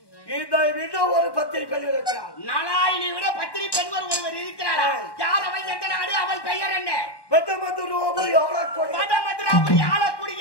இதை விட ஒரு பத்திரி பெண் இருக்கிறார். நாராயணி விட பத்திரி பெண் ஒருவர் இருக்கிறாரா? யார் அவள்? எந்த நாடு? அவள் பெயர் என்ன? வடமதுராபுரி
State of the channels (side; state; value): right; late; 1.1 ms